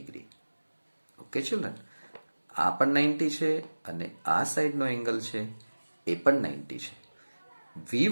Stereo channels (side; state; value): both; inverted; correlation -1.00